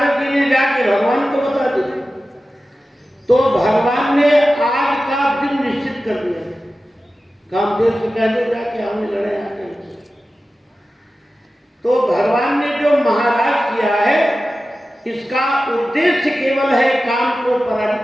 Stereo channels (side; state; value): both; normal; correlation 0.94